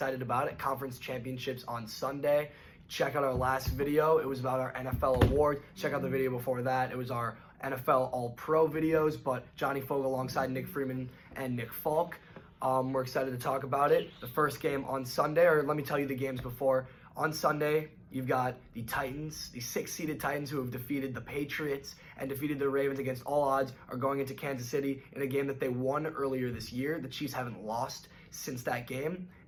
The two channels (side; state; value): both; identical; correlation 1.00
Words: about it. Conference championships on Sunday. Check out our last video. It was about our NFL award. Check out the video before that. It was our NFL All-Pro videos, but Johnny Fogle alongside Nick Freeman and Nick Falk. We're excited to talk about it. The first game on Sunday, or let me tell you the games before. On Sunday, you've got the Titans, the 6-seeded Titans who have defeated the Patriots and defeated the Ravens against all odds, are going into Kansas City in a game that they won earlier this year. The Chiefs haven't lost since that game.